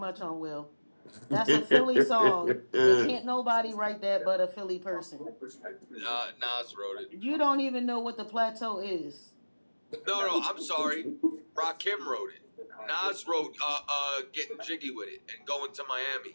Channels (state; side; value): inverted; both; correlation -1.00